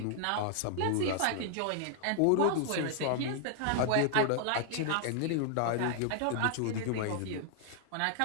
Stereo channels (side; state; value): both; different; correlation 0.00